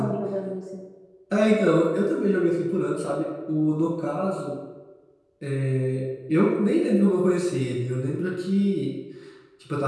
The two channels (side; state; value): both; identical; correlation 1.00